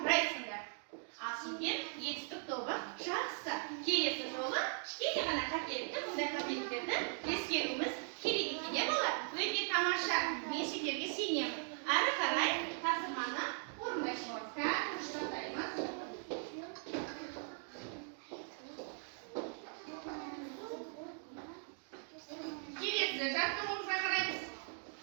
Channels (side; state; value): left; silent; 52 dB below the other